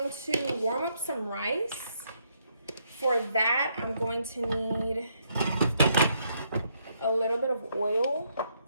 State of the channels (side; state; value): both; inverted; correlation -0.74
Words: to warm up some rice. For that, I'm going to need a little bit of oil.